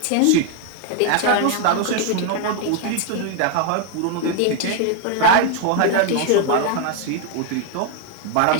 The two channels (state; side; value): different; both; correlation 0.00